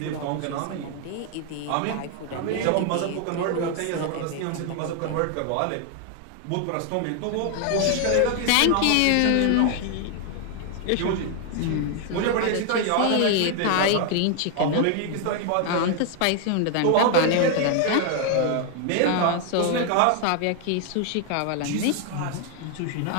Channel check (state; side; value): different; both; correlation 0.01